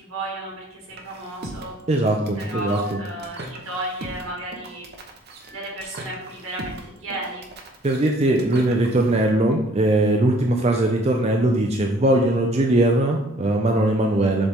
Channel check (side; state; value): both; normal; correlation 0.58